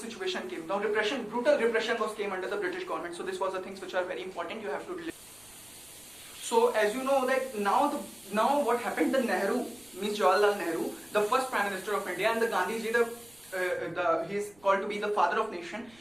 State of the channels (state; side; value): noise; right; rumble, 28 dB below the sound